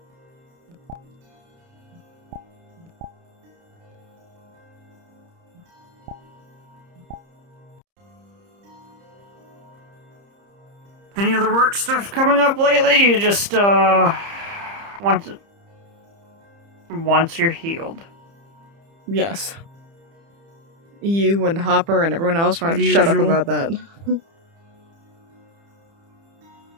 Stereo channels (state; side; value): late; left; 30 ms